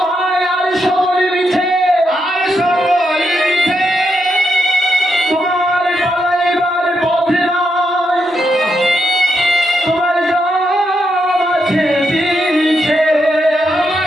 ভাই, আর সকলে মিছে, আর সকলে মিছে, তোমার পালাইবার পথে নাই, তোমার জাম আছে পিছে,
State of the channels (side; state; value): both; normal; correlation 0.82